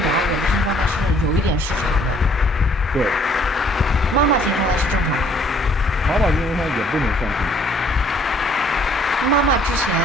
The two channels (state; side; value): normal; both; correlation 0.62